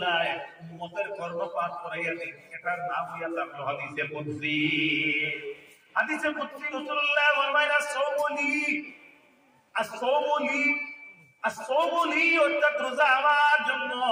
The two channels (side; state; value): both; identical; correlation 1.00